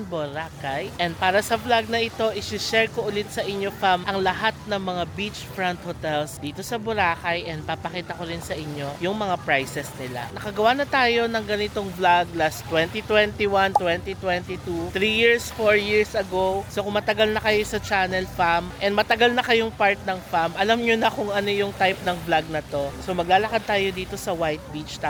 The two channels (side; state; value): both; identical; correlation 1.00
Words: Boracay. And para sa vlog na ito, isi-share ko ulit sa inyo fam ang lahat ng mga beachfront hotels dito sa Boracay. And papakita ko rin sa inyo yung mga prices nila. Nakagawa na tayo ng ganitong vlog last 2021, 2022, 3 years, 4 years ago. So kung matagal na kayo sa channel fam, and matagal na kayong part ng fam, alam nyo na kung ano yung type ng vlog na to. So maglalakad tayo dito sa White Beach,